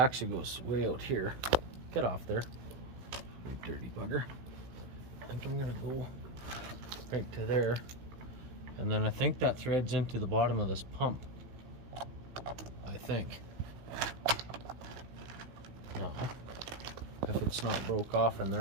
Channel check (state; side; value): late; left; 16 ms